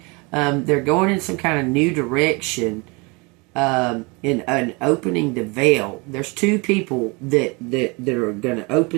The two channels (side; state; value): left; quieter; 28.2 dB